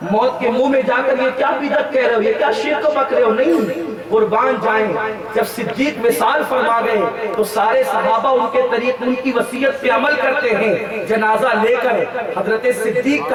موت کے منہ میں جا کر یہ کیا بدعت کہہ رہے ہو، یہ کیا شرک بک رہے ہو؟ نہیں، قربان جائیں۔ جب صدیق وصال فرما گئے تو سارے صحابہ ان کے طریق ان کی وصیت پہ عمل کرتے ہیں، جنازہ لے کر حضرت صدیق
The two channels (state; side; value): identical; both; correlation 1.00